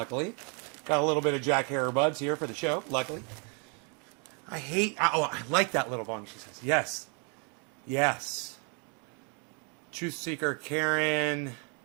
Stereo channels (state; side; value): quieter; left; 36.6 dB